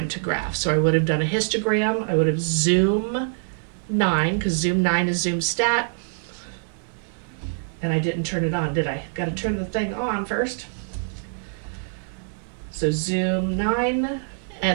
to graph. So I would have done a histogram. I would have zoom 9, because zoom 9 is zoom stat. And I didn't turn it on, did I? Got to turn the thing on first. So zoom 9,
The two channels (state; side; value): silent; left; digital silence